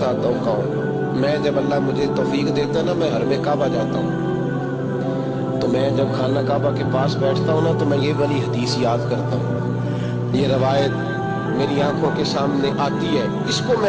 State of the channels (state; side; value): identical; both; correlation 1.00